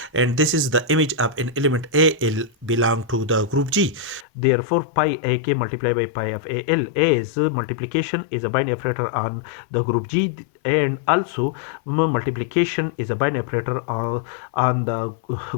and this is the image of an element al belong to the group G. Therefore, pi ak multiplied by pi of al, as multiplication is a binary operator on the group G, and also multiplication is a binary operator on the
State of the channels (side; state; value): right; drops out; at 4.2 s